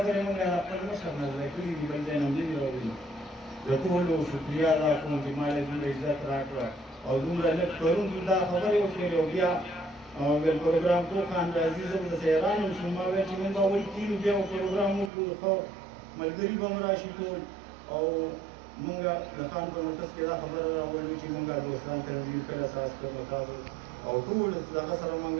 موږ خپل مشر نه زده کړې دي بل ځای نه هم دي راوړي. د ټولو شکریه ادا کوم چې ما له دومره عزت راکړه او دومره لږ پرون دا خبرې وشولې او بیا ویل پروګرام کو خان راځي زه به حیران شوم. ما ویل چې موږ به اول کیلو بیا پروګرام وکړو خو ملګري به هم راشي ټول او موږ د خان په مرکز کې دا خبره راوړو چې موږ دوستان تنظیم پیل اساس کړو تاسو او ټول دغه سره موږ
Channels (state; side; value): drops out; left; at 15.1 s